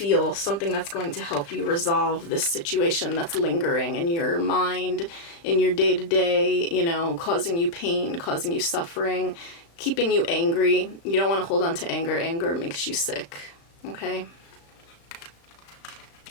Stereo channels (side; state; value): right; late; 35 ms